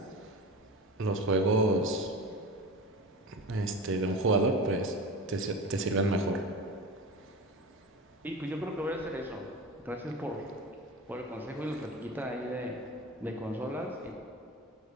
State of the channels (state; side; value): normal; both; correlation 0.30